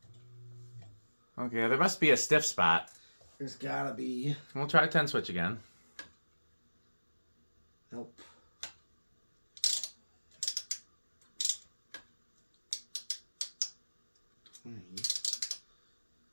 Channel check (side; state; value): both; inverted; correlation -1.00